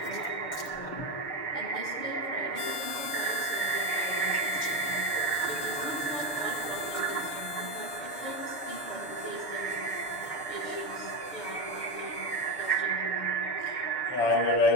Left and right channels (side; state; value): right; late; 6.9 ms